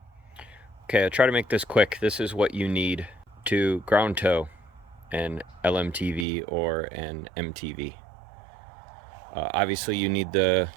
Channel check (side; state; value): left; drops out; at 6.2 s